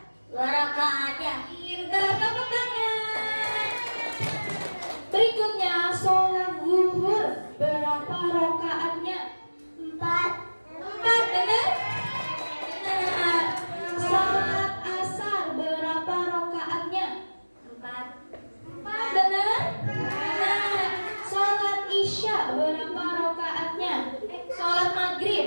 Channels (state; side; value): inverted; both; correlation -1.00